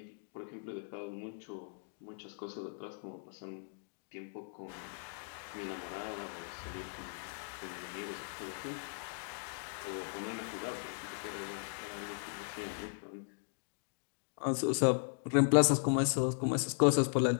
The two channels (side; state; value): right; silent; digital silence